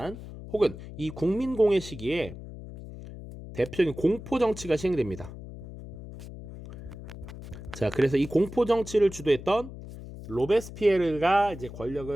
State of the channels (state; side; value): noise; left; hum, 13 dB below the sound